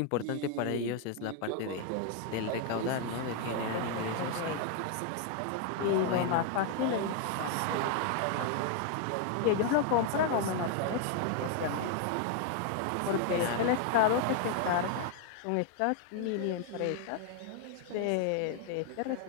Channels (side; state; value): both; different; correlation 0.00